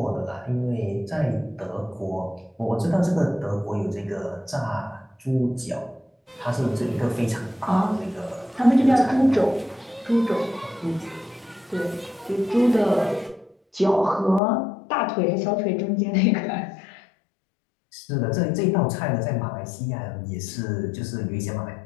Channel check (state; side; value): drops out; right; at 14.4 s